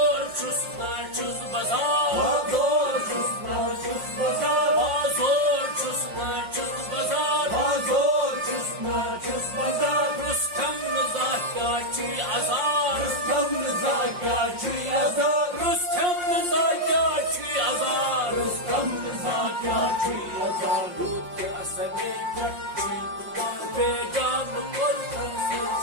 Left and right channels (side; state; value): left; late; 5.6 ms